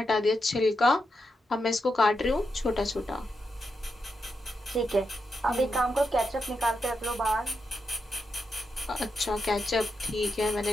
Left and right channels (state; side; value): normal; both; correlation 0.85